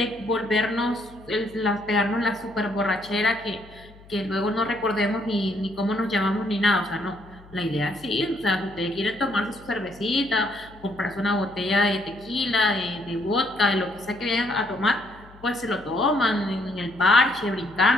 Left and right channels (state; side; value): noise; left; hum, 23 dB below the sound